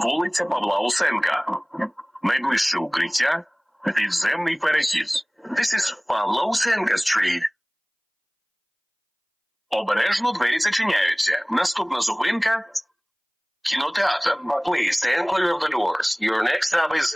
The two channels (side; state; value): both; identical; correlation 1.00